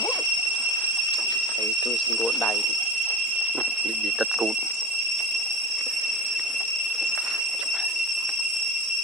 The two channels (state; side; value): normal; both; correlation 0.27